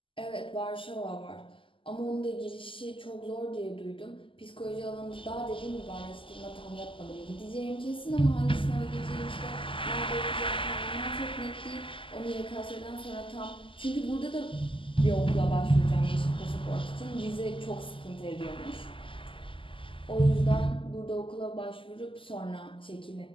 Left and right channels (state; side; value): late; right; 0.25 ms